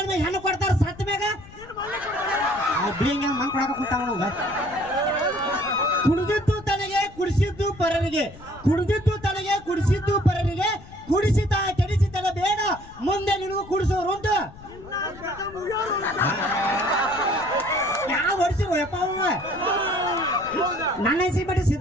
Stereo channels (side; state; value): left; noise; rumble, 19 dB below the sound